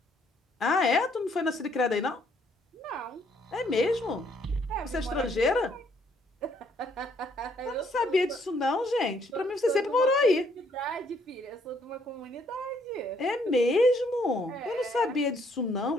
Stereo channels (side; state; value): both; normal; correlation 0.67